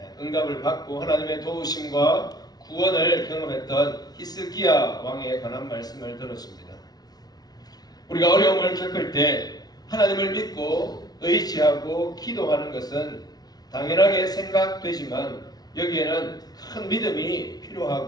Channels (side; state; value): right; late; 0.19 ms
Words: 응답을 받고 하나님의 도우심과 구원을 경험했던 히스기야 왕에 관한 말씀을 들었습니다. 우리가 어려움을 겪을 때 하나님을 믿고 의지하고 기도하는 것은 당연하게 생각되지만 여기에는 큰 믿음이